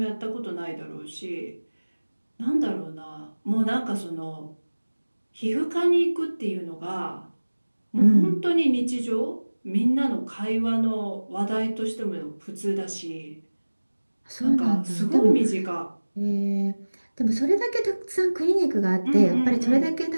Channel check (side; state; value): both; inverted; correlation -1.00